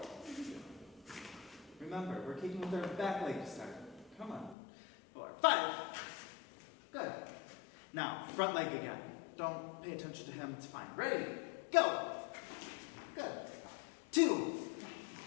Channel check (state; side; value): drops out; right; at 4.5 s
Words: Remember, we're kicking with our back leg to start. Come on. 4, 5. Good. Now, front leg again. Don't pay attention to him, it's fine. Ready? Go. Good. 2.